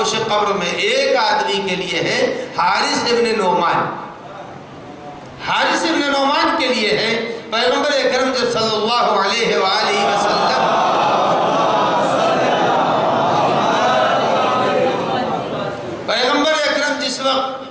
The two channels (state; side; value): identical; both; correlation 1.00